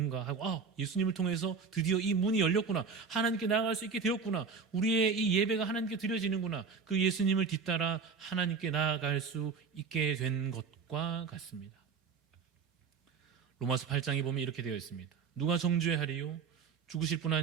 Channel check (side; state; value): left; quieter; 5.4 dB